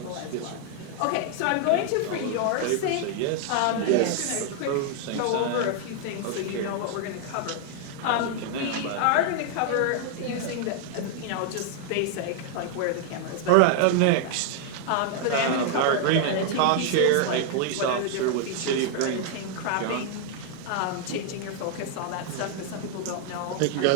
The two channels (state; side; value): different; both; correlation 0.00